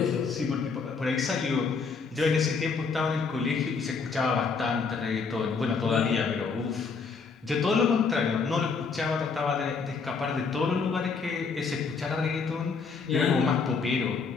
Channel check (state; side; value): quieter; right; 5.0 dB